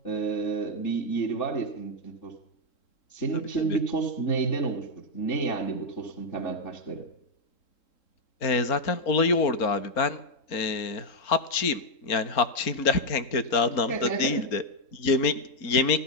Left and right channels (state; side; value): late; right; 3.7 ms